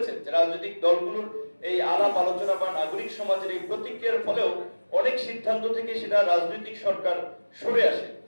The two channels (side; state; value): both; inverted; correlation -1.00